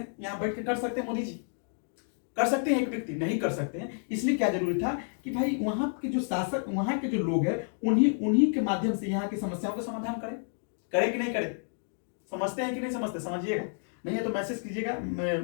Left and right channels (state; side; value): silent; right; 58 dB below the other